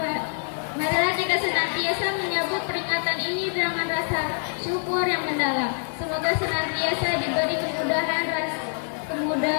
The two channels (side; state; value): right; silent; 61 dB below the other